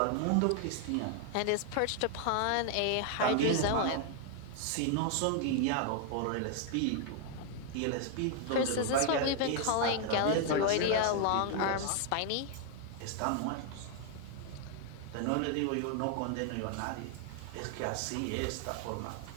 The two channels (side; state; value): both; different; correlation 0.00